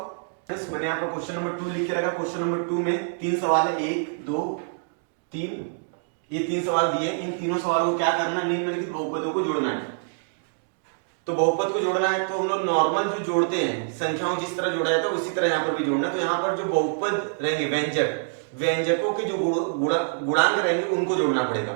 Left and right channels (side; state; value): left; silent; digital silence